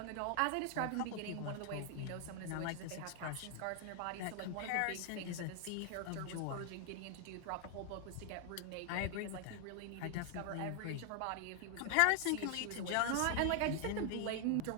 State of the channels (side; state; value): both; different; correlation 0.00